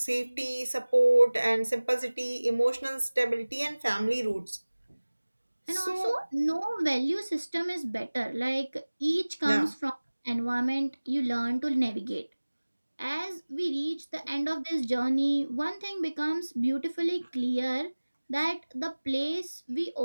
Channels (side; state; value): both; inverted; correlation -1.00